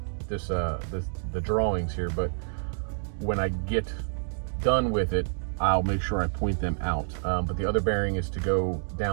the drawings here, but when I get done with it, I'll make sure I point them out. But the other bearing is to go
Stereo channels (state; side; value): silent; left; digital silence